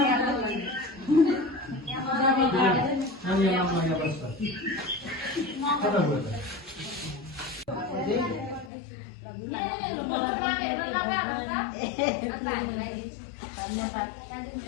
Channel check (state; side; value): drops out; right; at 8.7 s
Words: अनि यहाँ माया बस्छ कता गयो